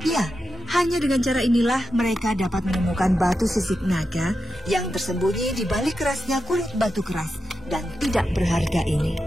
Ya, hanya dengan cara inilah mereka dapat menemukan batu sisik naga yang tersembunyi di balik kerasnya kulit batu keras dan tidak berharga ini.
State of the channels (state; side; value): normal; both; correlation 0.88